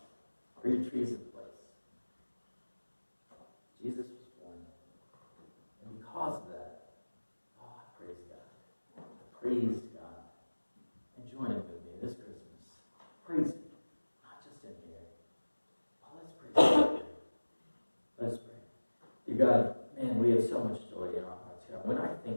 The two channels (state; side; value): inverted; both; correlation -1.00